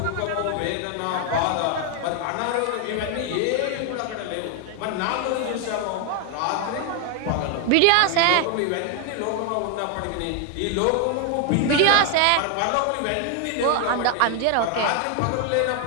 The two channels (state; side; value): different; both; correlation 0.00